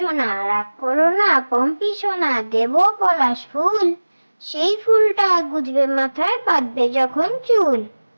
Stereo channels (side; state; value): both; inverted; correlation -1.00